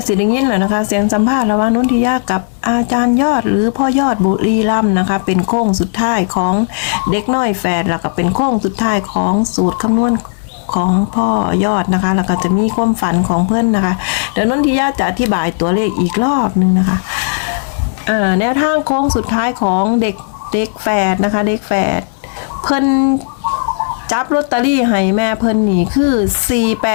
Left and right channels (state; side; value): silent; right; digital silence